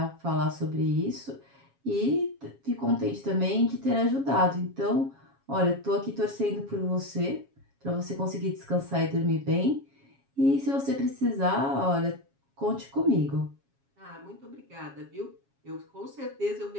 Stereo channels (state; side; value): late; left; 7.3 ms